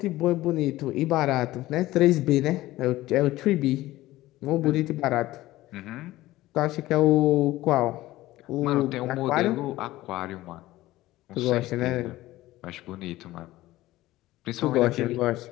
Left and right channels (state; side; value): quieter; right; 16.9 dB